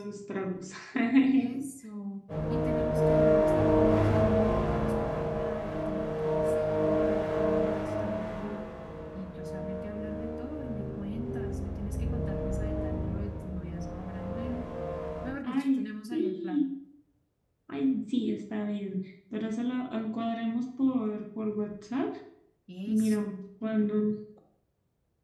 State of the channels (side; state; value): both; identical; correlation 1.00